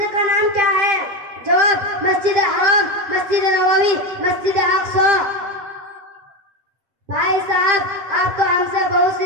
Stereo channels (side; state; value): left; late; 7.6 ms